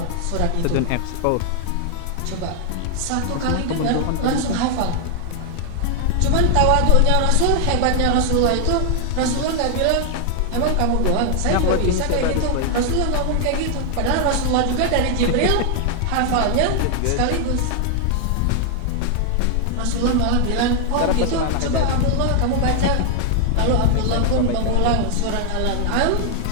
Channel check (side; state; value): both; different; correlation 0.00